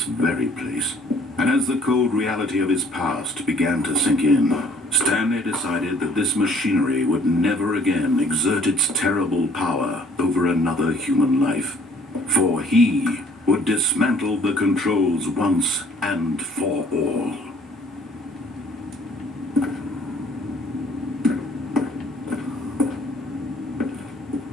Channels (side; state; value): both; normal; correlation 0.59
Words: very place. And as the cold reality of his past began to sink in, Stanley decided that this machinery would never again exert its terrible power over another human life. For he would dismantle the controls once and for all.